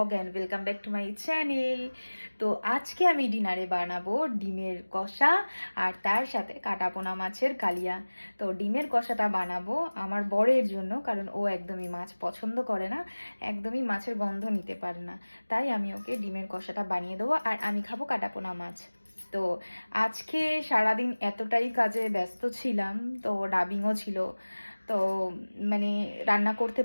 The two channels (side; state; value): both; inverted; correlation -1.00